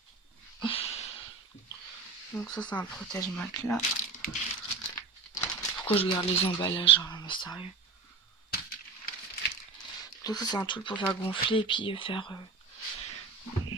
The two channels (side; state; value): left; quieter; 4.3 dB